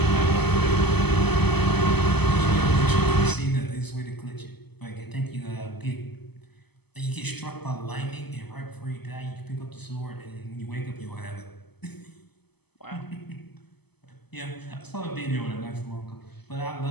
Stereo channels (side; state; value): right; late; 0.98 ms